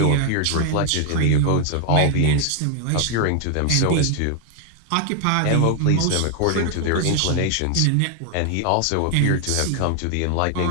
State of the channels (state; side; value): different; both; correlation 0.00